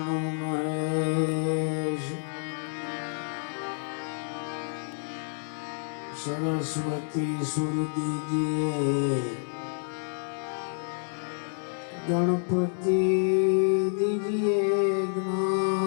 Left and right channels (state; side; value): silent; right; 59 dB below the other